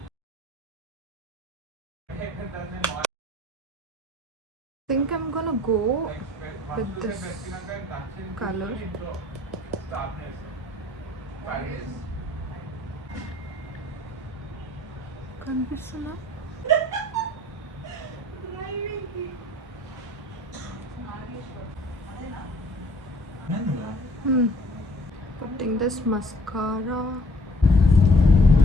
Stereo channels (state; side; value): normal; both; correlation 0.56